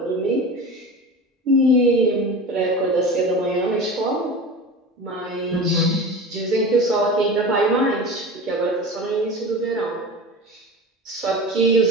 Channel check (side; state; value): both; normal; correlation 0.31